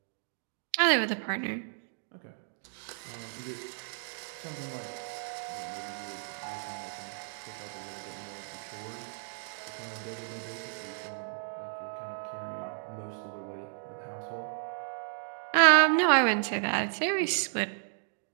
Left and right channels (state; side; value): silent; left; digital silence